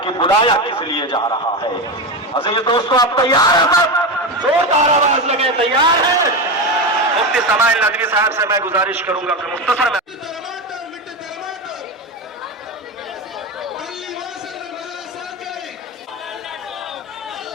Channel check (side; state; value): both; normal; correlation 0.17